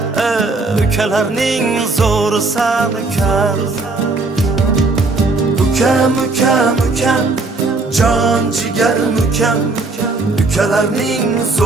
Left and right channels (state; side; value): quieter; left; 3.5 dB